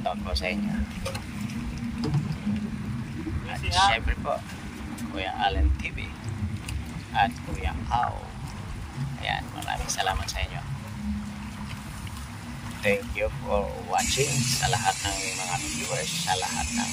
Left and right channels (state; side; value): identical; both; correlation 1.00